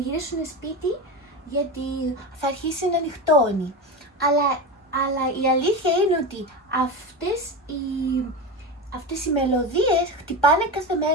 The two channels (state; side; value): normal; both; correlation 0.22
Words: σπίτι γιατί θα αρχίσει να νυχτώνει. Αλλά η αλήθεια είναι ότι αυτές οι μελωδίες χτυπάνε κάθε